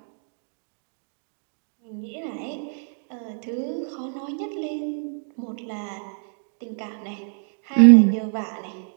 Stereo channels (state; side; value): silent; left; 62 dB below the other